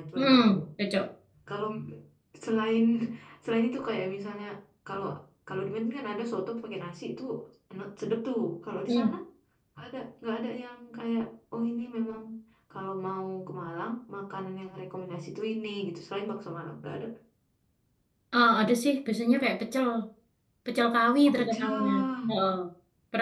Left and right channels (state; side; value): identical; both; correlation 1.00